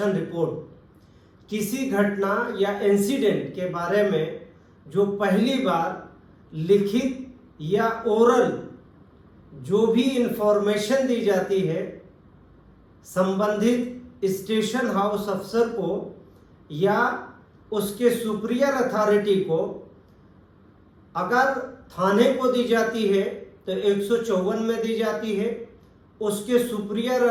रिपोर्ट। किसी घटना या इंसिडेंट के बारे में जो पहली बार लिखित या ओरल जो भी इंफॉर्मेशन दी जाती है संबंधित स्टेशन हाउस अफसर को या उसके सुपीरियर अथॉरिटी को, अगर थाने को दी जाती है तो 154 में दी जाती है, उसके सुपीरियर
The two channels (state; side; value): identical; both; correlation 1.00